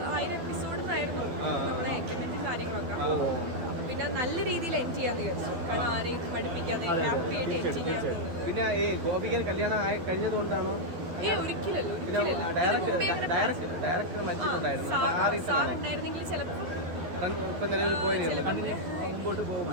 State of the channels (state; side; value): late; left; 12 ms